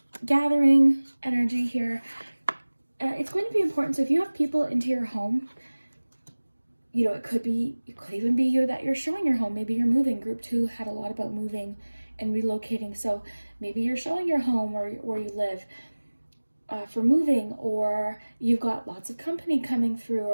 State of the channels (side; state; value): both; inverted; correlation -1.00